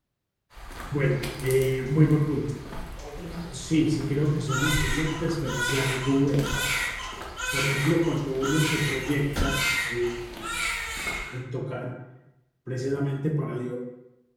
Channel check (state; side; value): identical; both; correlation 1.00